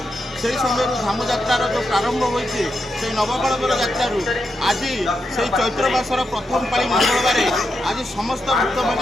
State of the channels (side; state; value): both; normal; correlation 0.85